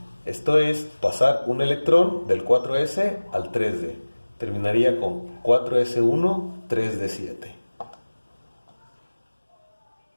Esto es pasar un electrón del 4s al 3d. Terminaría con 4s1, 3d7.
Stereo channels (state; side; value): inverted; both; correlation -1.00